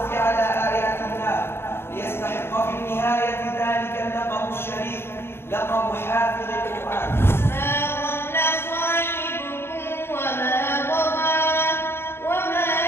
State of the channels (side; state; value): right; late; 0.11 ms